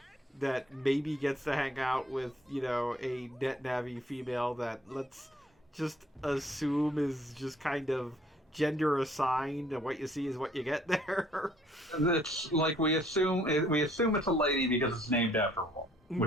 that maybe gets to hang out with, you know, a net navi female that let's just assume is just kind of gender assigned, and what you see is what you get there. It's like we assume it's a lady because it's named after a woman,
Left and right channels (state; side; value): normal; both; correlation 0.62